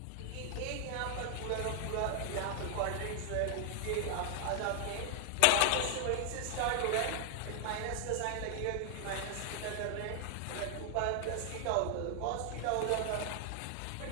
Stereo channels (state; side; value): different; both; correlation 0.00